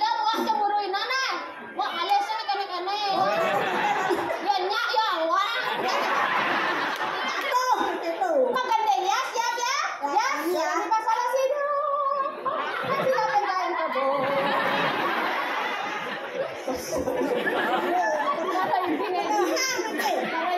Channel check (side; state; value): both; identical; correlation 1.00